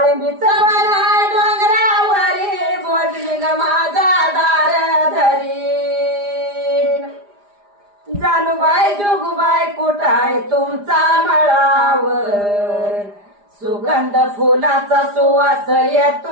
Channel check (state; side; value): late; left; 4.9 ms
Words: बना डोंगरावरी सर्वलिंग माझा दार धरी. जानूबाई जोगबाई कुठाय तुमचा मळावर, सुगंध फुलाचा सुवास